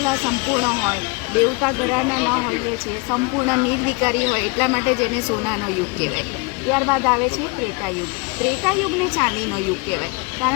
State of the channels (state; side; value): quieter; right; 28.7 dB